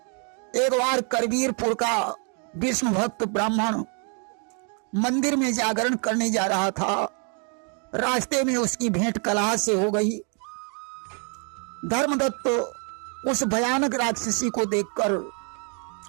एक बार करवीरपुर का विष्णु भक्त ब्राह्मण मंदिर में जागरण करने जा रहा था। रास्ते में उसकी भेंट कलहा से हो गई। धर्मदत्त उस भयानक राक्षसी को देखकर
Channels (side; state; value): left; quieter; 39.0 dB